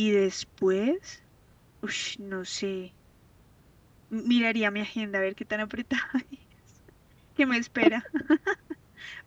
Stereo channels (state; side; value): identical; both; correlation 1.00